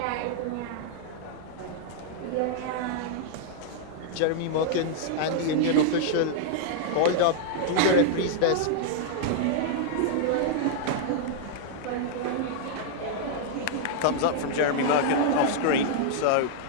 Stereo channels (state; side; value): different; both; correlation -0.01